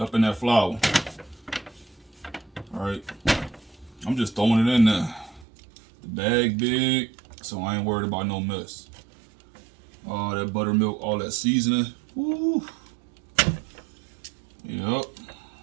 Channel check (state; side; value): drops out; left; at 5.5 s